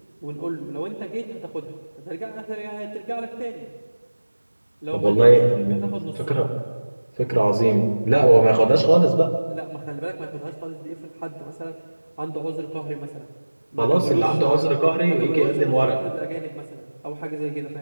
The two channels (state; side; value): inverted; both; correlation -1.00